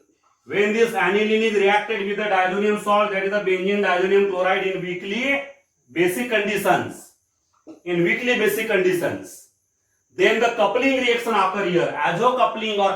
When this aniline is reacted with the diazonium salt, that is the benzene diazonium chloride, in weakly basic conditions, then the coupling reaction occur here. Azo coupling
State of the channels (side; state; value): both; identical; correlation 1.00